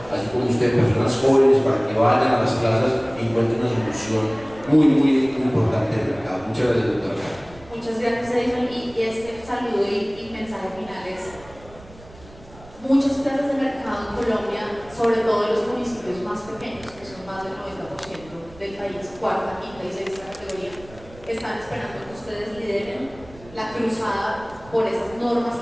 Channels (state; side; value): noise; right; rumble, 21 dB below the sound